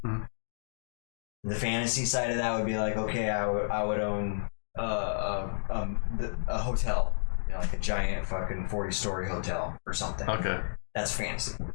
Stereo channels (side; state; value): right; silent; digital silence